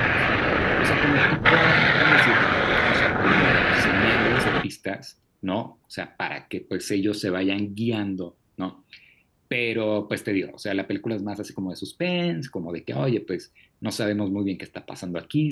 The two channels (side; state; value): both; identical; correlation 1.00